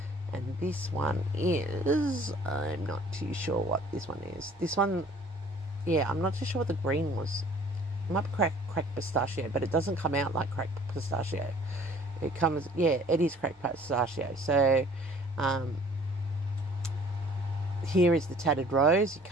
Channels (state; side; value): normal; both; correlation 0.53